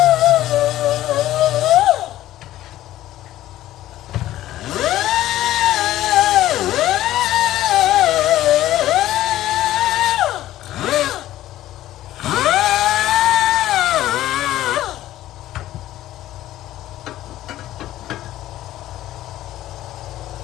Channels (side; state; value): right; quieter; 14.2 dB